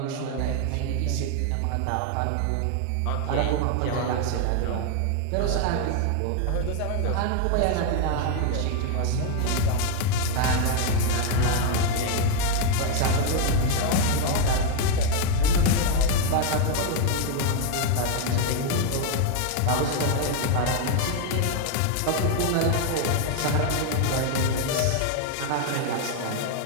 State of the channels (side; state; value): both; different; correlation 0.01